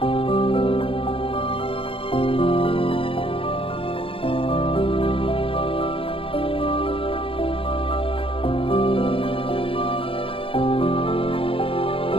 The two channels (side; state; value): right; late; 0.26 ms